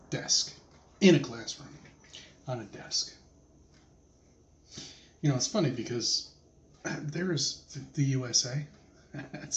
desk, in a classroom, on a desk. You know, it's funny because there's the USA.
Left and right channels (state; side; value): identical; both; correlation 1.00